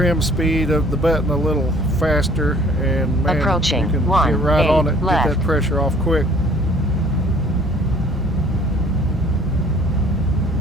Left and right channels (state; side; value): normal; both; correlation 0.54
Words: speed of the button a little faster, and man, Approaching you can 1, get right 8 on it, left. get that pressure off quick.